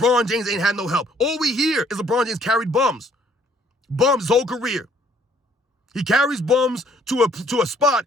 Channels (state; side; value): normal; both; correlation 0.63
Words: James ain't had no help. All we hear is LeBron James carried bums. Bums his whole career. He carries bums to a spot